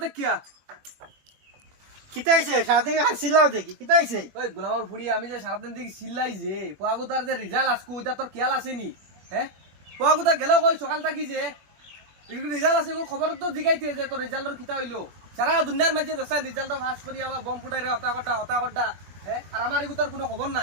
কিয়া কিতাইছে সাথে আর সিলাও দেখি কিতাইছে ওই গোলামার ফুড়ি আমি যে সারাদিন দেখি সিল্লাই যে ফুয়াগুতার যে রিজাল্ট আজকে ওইটা তোর খেয়াল আসেনি হ্যাঁ ফুয়াগুতা গেল কই সকাল থাকি যে রিজাল্ট আছে খবর তো জিগাইতে যে তোর রিজাল্টর কিতা হইলো সারা দুনিয়ার মাঝে দেখছেন রিজাল্ট পাস করি আবার বম ফুটাই রে হতা কটা হ্যাঁ আর আমার এগুতার কোনো খবর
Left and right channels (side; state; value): left; late; 21 ms